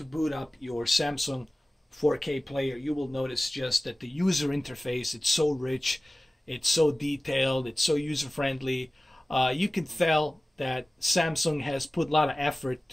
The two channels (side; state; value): both; normal; correlation 0.97